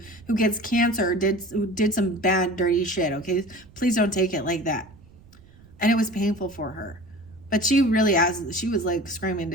gets cancer who did some bad, dirty shit, okay? Please don't take it like that. And it was painful for her. But she really she was like screaming to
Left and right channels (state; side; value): noise; right; rumble, 25 dB below the sound